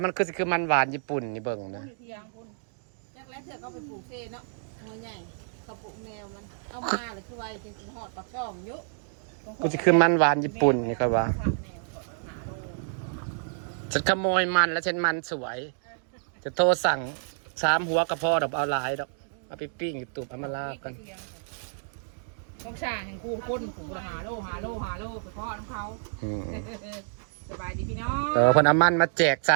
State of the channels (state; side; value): silent; left; digital silence